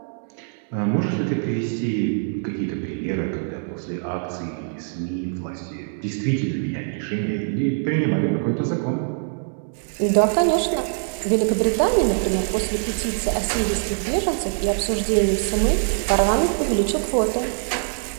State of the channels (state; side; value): silent; left; 63 dB below the other